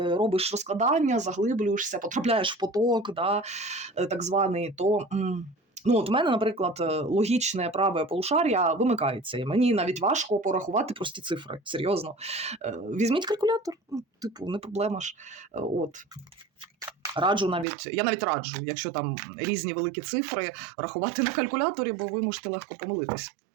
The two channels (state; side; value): drops out; left; at 17.7 s